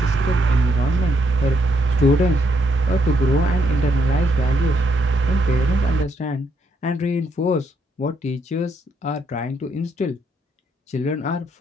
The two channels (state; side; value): normal; both; correlation 0.75